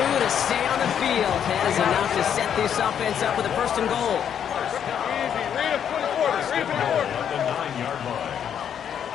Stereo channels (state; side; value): quieter; right; 8.7 dB